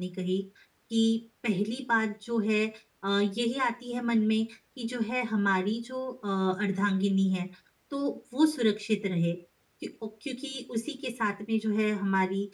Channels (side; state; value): both; identical; correlation 1.00